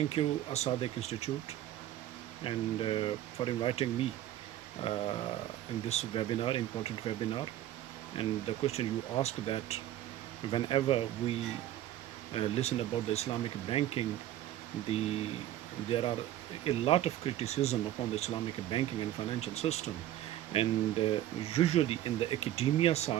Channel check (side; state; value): left; quieter; 12.9 dB